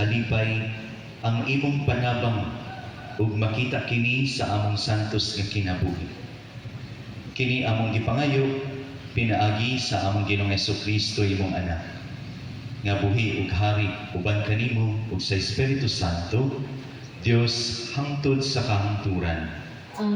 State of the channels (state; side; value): identical; both; correlation 1.00